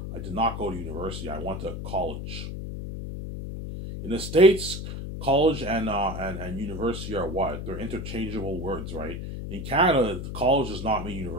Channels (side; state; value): left; noise; hum, 6 dB below the sound